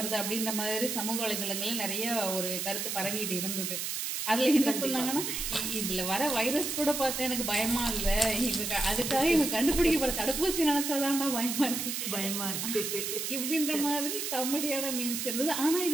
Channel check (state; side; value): noise; right; hiss, 3 dB below the sound